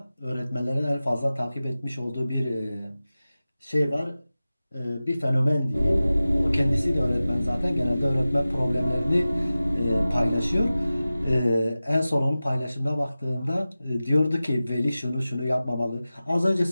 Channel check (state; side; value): inverted; both; correlation -0.96